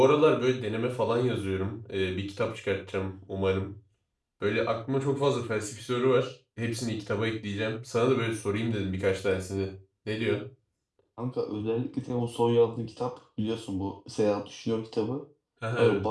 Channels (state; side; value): identical; both; correlation 1.00